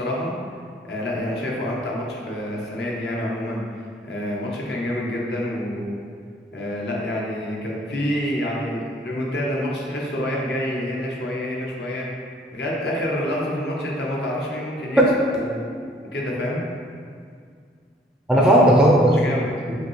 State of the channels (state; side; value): normal; both; correlation 0.57